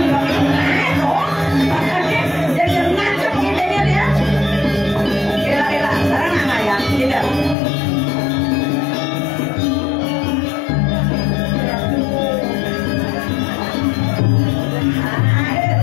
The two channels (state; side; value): drops out; right; at 7.6 s